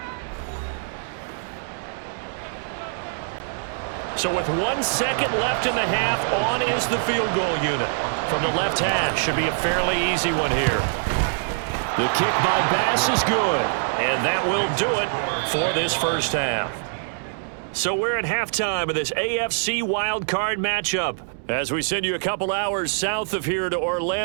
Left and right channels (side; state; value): left; silent; digital silence